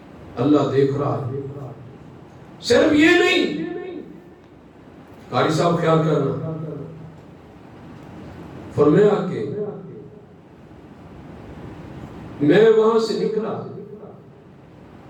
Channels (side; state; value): both; identical; correlation 1.00